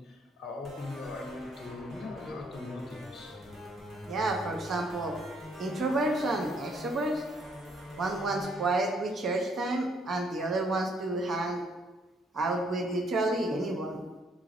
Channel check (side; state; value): both; normal; correlation 0.67